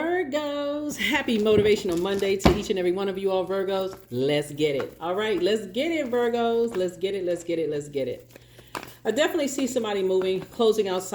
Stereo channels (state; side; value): identical; both; correlation 1.00